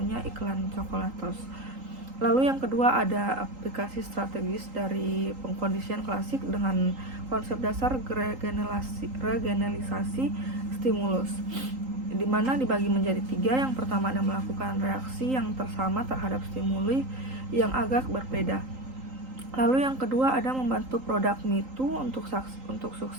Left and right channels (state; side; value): late; left; 3.8 ms